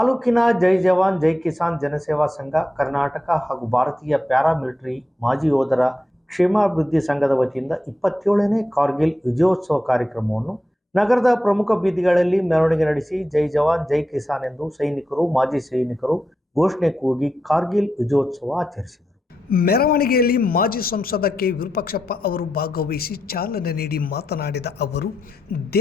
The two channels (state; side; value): normal; both; correlation 0.86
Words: ಜೈ ಜವಾನ್ ಜೈ ಕಿಸಾನ್ ಜನಸೇವಾ ಸಂಘ, ಕರ್ನಾಟಕ ಹಾಗೂ ಭಾರತೀಯ ಪ್ಯಾರಾಮಿಲಿಟರಿ ಮಾಜಿ ಯೋಧರ ಕ್ಷೇಮಾಭಿವೃದ್ಧಿ ಸಂಘದ ವತಿಯಿಂದ 27ನೇ ಕಾರ್ಗಿಲ್ ವಿಜಯೋತ್ಸವ ಕಾರ್ಯಕ್ರಮವನ್ನು ನಗರದ ಪ್ರಮುಖ ಬೀದಿಗಳಲ್ಲಿ ಮೆರವಣಿಗೆ ನಡೆಸಿ ಜೈ ಜವಾನ್ ಜೈ ಕಿಸಾನ್ ಎಂದು ಸೈನಿಕರು, ಮಾಜಿ ಸೈನಿಕರು ಘೋಷಣೆ ಕೂಗಿ ಕಾರ್ಗಿಲ್ ವಿಜಯೋತ್ಸವ ಆಚರಿಸಿದರು. ಮೆರವಣಿಗೆಯಲ್ಲಿ ಮಾಜಿ ಸಂಸದ ಕೆ ವಿರೂಪಾಕ್ಷಪ್ಪ ಅವರು ಭಾಗವಹಿಸಿ ಚಾಲನೆ ನೀಡಿ ಮಾತನಾಡಿದ ಅವರು,